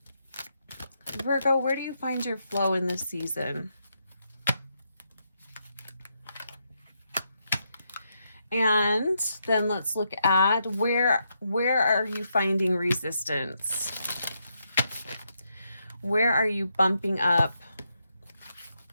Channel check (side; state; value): both; inverted; correlation -0.81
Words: Virgo, where do you find your flow in this season? And then let's look at where are you finding resistance? Where are you bumping up